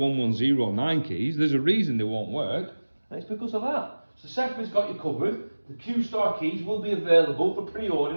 keys, there's a reason they won't work, and it's because of that. So Sefri's got you covered. The Q-Star keys will be available for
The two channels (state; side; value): inverted; both; correlation -1.00